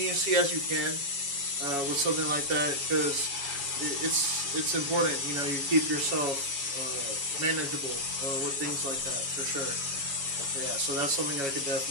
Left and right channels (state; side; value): late; left; 7.2 ms